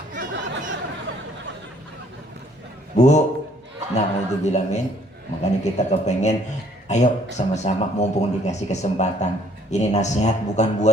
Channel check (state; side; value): normal; both; correlation 0.61